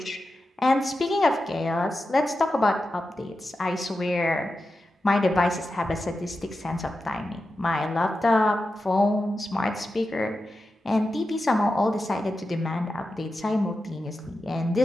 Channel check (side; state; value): both; normal; correlation 0.91